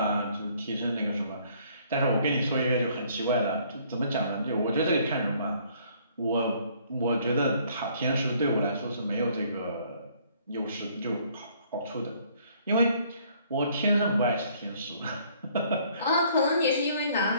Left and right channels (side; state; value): both; inverted; correlation -0.62